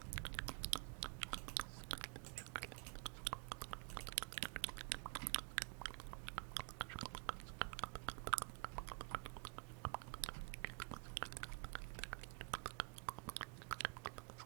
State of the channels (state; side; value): quieter; left; 30.2 dB